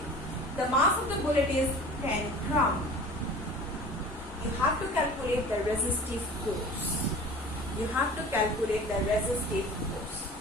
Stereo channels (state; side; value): normal; both; correlation 0.41